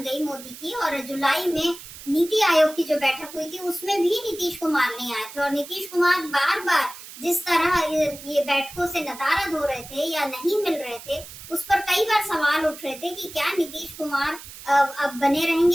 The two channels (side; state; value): right; noise; hiss, 15 dB below the sound